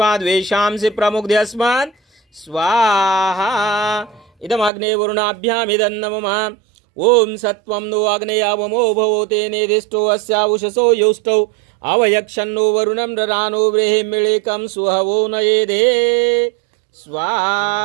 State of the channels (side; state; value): left; drops out; at 4.7 s